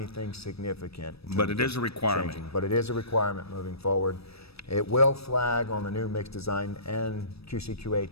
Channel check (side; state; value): right; late; 0.78 ms